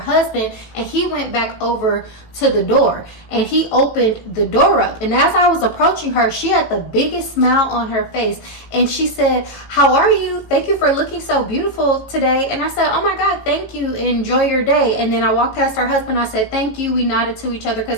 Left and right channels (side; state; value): right; late; 18 ms